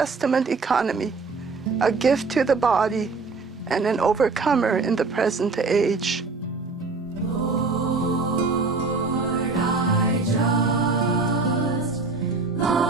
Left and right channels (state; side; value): quieter; left; 4.1 dB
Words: economy, a gift to the body and an overcomer in the present age.